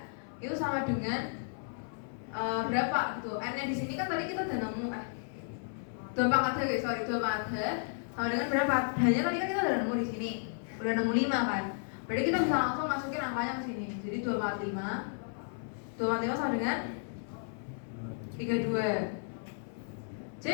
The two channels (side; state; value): right; silent; 56 dB below the other